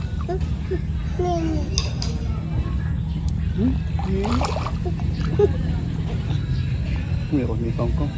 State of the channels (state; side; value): identical; both; correlation 1.00